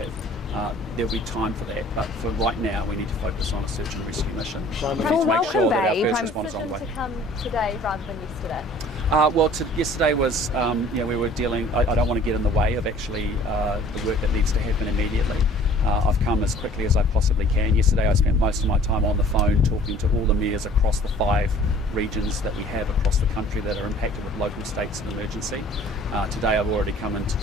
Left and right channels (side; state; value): both; normal; correlation 0.51